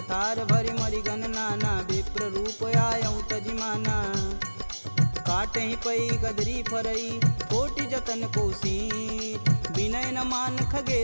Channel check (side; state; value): both; inverted; correlation -1.00